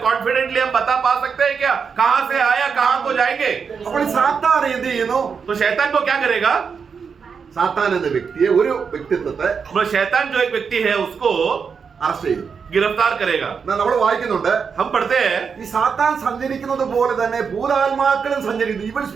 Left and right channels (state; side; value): quieter; left; 6.0 dB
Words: कॉन्फिडेंटली हम बता पा सकते हैं क्या कहां से आया कहां को जाएंगे। അപ്പോൾ സാത്താൻ എന്ത് ചെയ്യുന്നു? तो शैतान को क्या करेगा? സാത്താൻ എന്ന വ്യക്തിയെ, ഒരു വ്യക്തിത്വത്തെ शैतान जो एक व्यक्ति है उसको അറസ്റ്റ് ചെയ്യും, गिरफ्तार करेगा। നമ്മൾ വായിക്കുന്നുണ്ട്, हम पढ़ते हैं ഈ സാത്താൻ സഞ്ചരിക്കുന്നത് പോലെ തന്നെ ഭൂതാത്മാക്കളും സഞ്ചരിക്കുന്നു, ഈവൽ